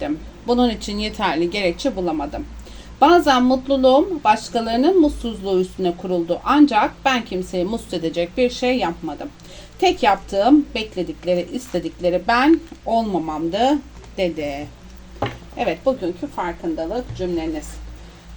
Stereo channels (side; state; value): both; identical; correlation 1.00